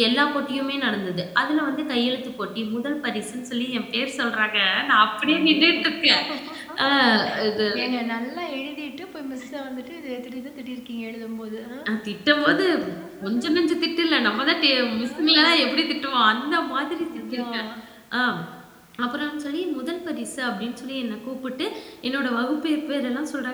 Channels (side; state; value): both; identical; correlation 1.00